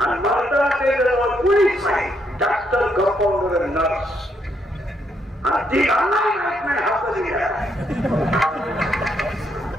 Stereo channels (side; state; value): both; normal; correlation 0.75